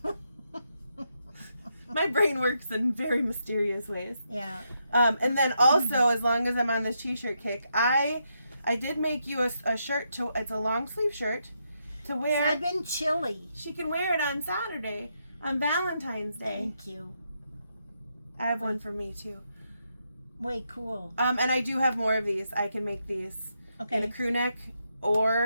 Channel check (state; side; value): inverted; both; correlation -0.81